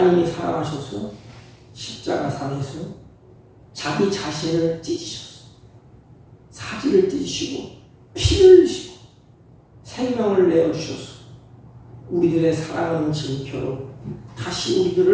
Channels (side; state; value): both; identical; correlation 1.00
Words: 사랑하셔서 십자가상에서 자기 자신을 찢으셨어요. 사지를 찢으시고 피를 흘리시고 생명을 내어주셔서 우리들의 사랑하는 증표로 다시